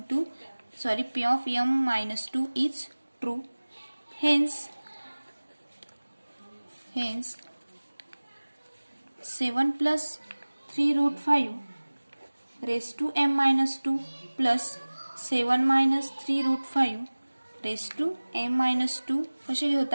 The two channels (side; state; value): both; inverted; correlation -1.00